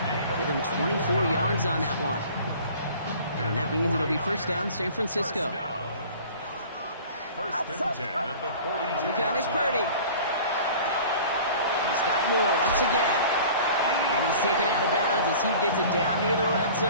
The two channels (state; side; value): inverted; both; correlation -0.44